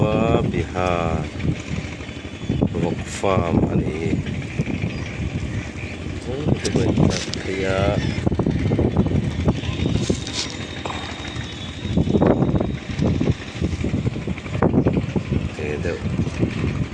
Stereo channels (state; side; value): identical; both; correlation 1.00